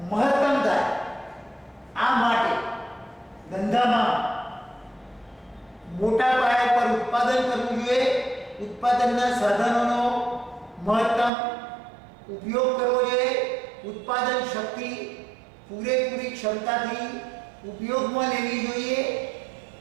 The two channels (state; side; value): drops out; left; at 11.3 s